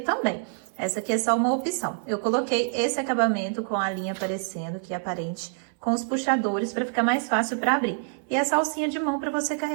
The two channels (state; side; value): silent; left; 57 dB below the other